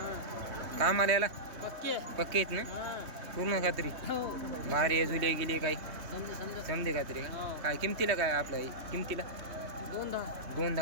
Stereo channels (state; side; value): late; left; 3.3 ms